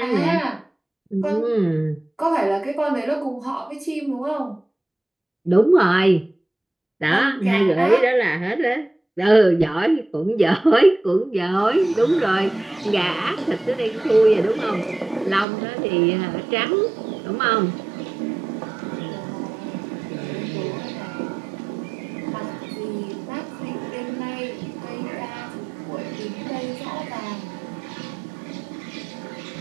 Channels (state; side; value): drops out; left; at 15.5 s